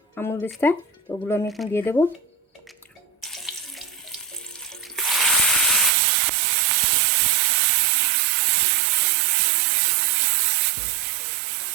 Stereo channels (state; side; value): drops out; left; at 5.9 s